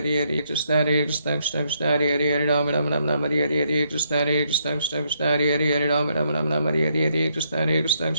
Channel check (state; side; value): inverted; both; correlation -0.74